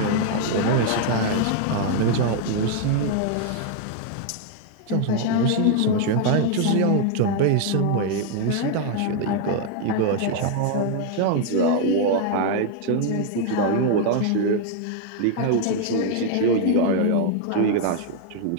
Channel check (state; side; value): different; both; correlation 0.00